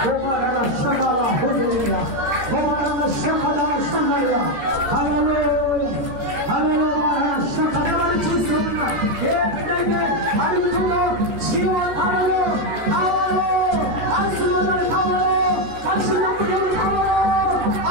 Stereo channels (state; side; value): late; left; 14 ms